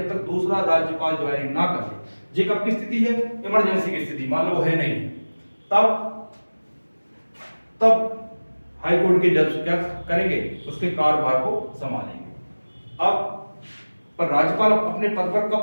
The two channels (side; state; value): both; inverted; correlation -1.00